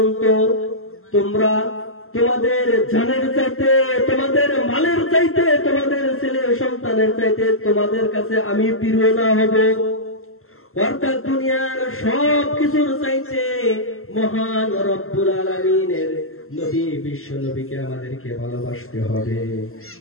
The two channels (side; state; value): right; late; 0.62 ms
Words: তোমরা তোমাদের জানের চাইতে, তোমাদের মালের চাইতে, তোমাদের ছেলে সন্তানের চাইতে তোমাদের কাছে আমি প্রিয় না হব। অর্থাৎ দুনিয়ার সব কিছুর চাইতে মহান রব্বুল আলামিনের নবী বিশ্ব নবীকে আমাদেরকে ভালোবাসতে হবে।